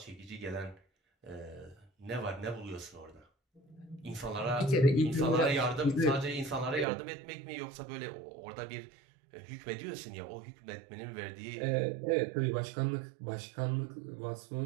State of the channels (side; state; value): left; drops out; at 6.9 s